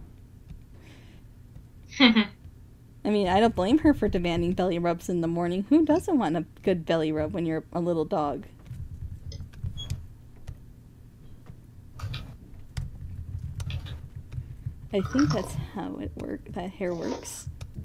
I mean, I don't blame her for demanding belly rubs in the morning. Who doesn't want a good belly rub when you're a little dog? I think that's how that hair works.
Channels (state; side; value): identical; both; correlation 1.00